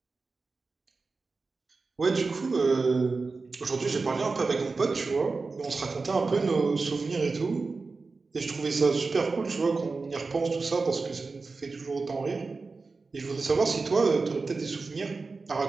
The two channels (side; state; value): left; quieter; 4.1 dB